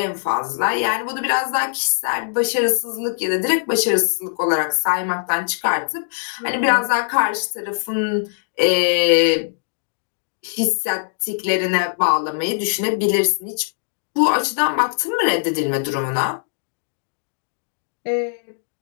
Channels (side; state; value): right; silent; digital silence